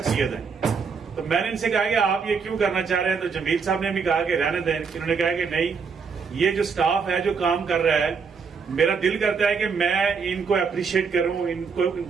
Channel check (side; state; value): left; quieter; 5.6 dB